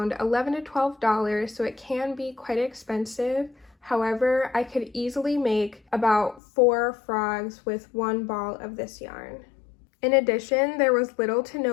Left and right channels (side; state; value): right; drops out; at 6.4 s